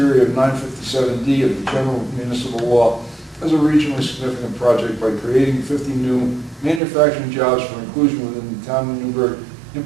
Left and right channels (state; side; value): drops out; left; at 6.8 s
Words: of 957D of the General Municipal Law as a regionally significant project by creating 50 new manufacturing jobs for inclusion within the Town of Newburgh